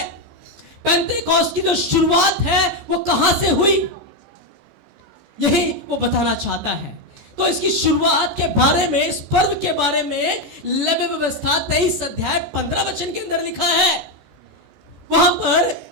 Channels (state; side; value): late; left; 14 ms